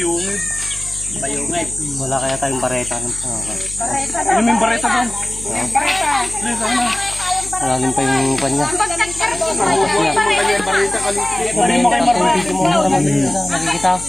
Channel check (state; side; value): noise; left; hum, 15 dB below the sound